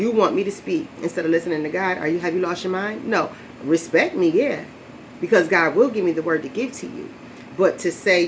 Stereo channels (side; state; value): both; identical; correlation 1.00